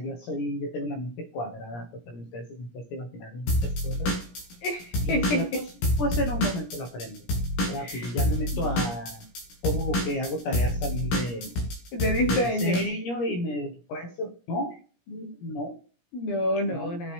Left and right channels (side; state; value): right; late; 17 ms